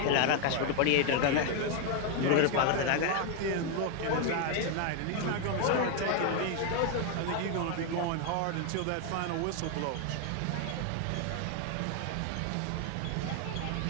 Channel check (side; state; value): both; different; correlation 0.01